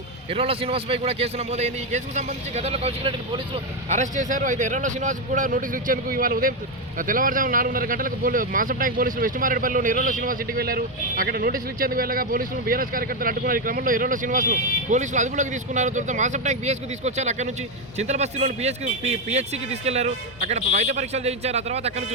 ఎర్రోల శ్రీనివాస్పై కూడా కేసు నమోదైంది. ఈ కేసుకు సంబంధించి గతంలో కౌశిక్ రెడ్డిని పోలీసులు అరెస్ట్ చేశారు. అయితే ఎర్రోల శ్రీనివాస్ కూడా నోటీసులు ఇచ్చేందుకు ఇవాళ ఉదయం తెల్లవారుజామున 4:30 గంటలకు మాసం ట్యాంక్ పోలీసులు వెస్ట్ మారేడుపల్లిలోని ఎర్రోల శ్రీనివాస్ ఇంటికి వెళ్లారు. అక్కడ నోటీసులు ఇచ్చేందుకు వెళ్ళగా పోలీసులు బీఆర్ఎస్ కార్యకర్తలు అడ్డుకున్నారు. ఈ క్రమంలో ఎర్రోల శ్రీనివాస్ను పోలీసులు అదుపులోకి తీసుకున్నారు. తర్వాత మాసం ట్యాంక్ పిఎస్కు తీసుకొచ్చారు. అక్కడ నుంచి చింతలబస్తీలోని పిహెచ్సికి తీసుకెళ్లారు. అక్కడ వైద్య పరీక్షలు చేయించారు. ఆ తర్వాత అక్కడ నుంచి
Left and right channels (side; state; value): both; normal; correlation 0.07